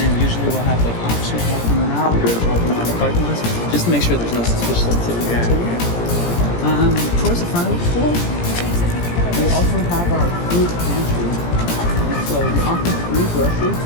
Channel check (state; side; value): late; right; 17 ms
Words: usually we'll have like officers walking around or driving around the parking lots just to make sure there's no suspicious activity. Towards the front of the school, we also have our food pantry. And so we offer free groceries